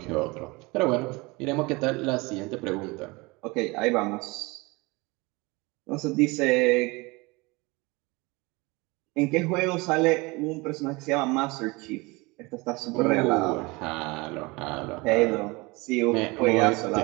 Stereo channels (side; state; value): left; quieter; 24.8 dB